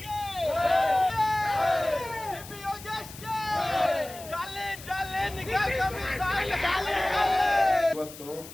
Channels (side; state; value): left; noise; hiss, 16 dB below the sound